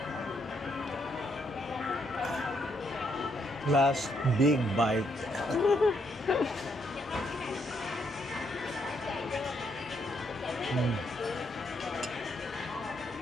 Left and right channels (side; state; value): both; normal; correlation 0.75